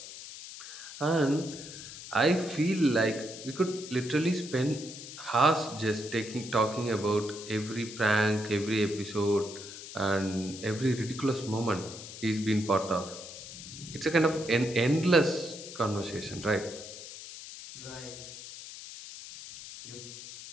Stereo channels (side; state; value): left; noise; hiss, 12 dB below the sound